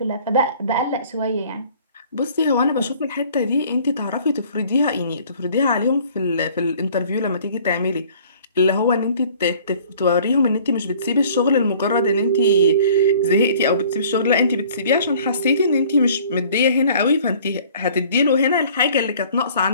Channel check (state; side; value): inverted; both; correlation -0.52